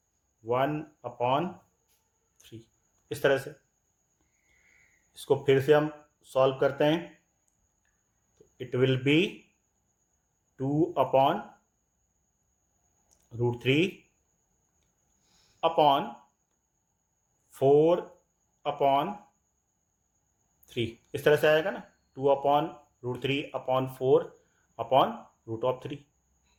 1/3, इस तरह से। इसको फिर से हम सॉल्व करते हैं, तो इट विल बी 2/√3 अपॉन 4/3, इस तरह से आएगा ना, 2/√3/4/√3।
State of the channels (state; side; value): identical; both; correlation 1.00